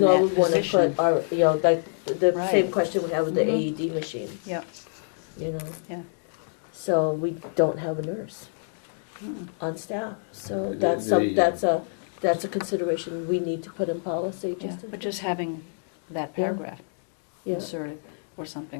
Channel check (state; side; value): silent; right; digital silence